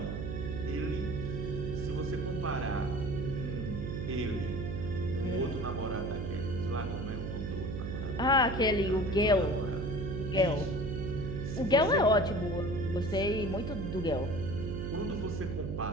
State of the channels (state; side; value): noise; right; hum, 4 dB below the sound